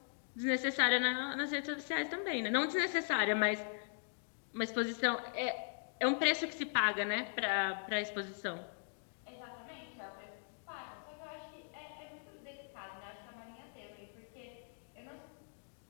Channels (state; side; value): silent; right; digital silence